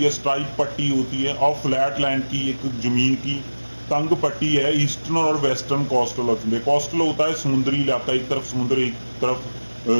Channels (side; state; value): both; inverted; correlation -1.00